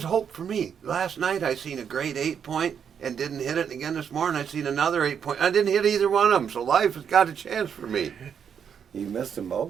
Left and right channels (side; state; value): left; quieter; 7.6 dB